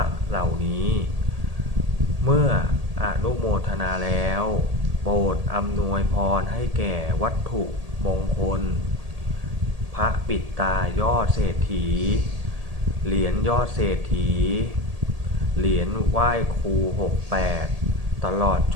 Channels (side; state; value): left; late; 1.8 ms